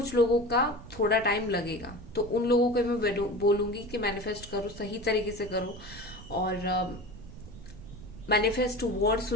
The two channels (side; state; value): right; noise; rumble, 16 dB below the sound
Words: लोगों का थोड़ा टाइम लगेगा, तो उन लोगों को मैं बोलूंगी कि मैनिफेस्ट करो, सही तरीके से करो। और मैनिफेस्ट वर्ड